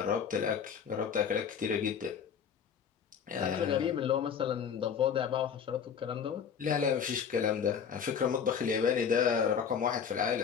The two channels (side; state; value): right; quieter; 7.3 dB